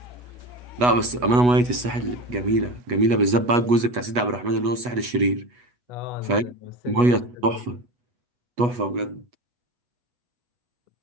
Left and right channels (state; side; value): late; left; 8.2 ms